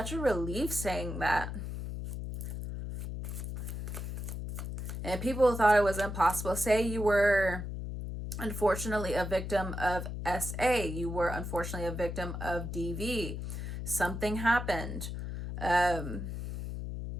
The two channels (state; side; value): noise; left; hum, 6 dB below the sound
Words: a relief saying that. And people thought it was impossible. Say you were unfortunately a victim of SA. You were unfortunately a victim of DV. Something happened.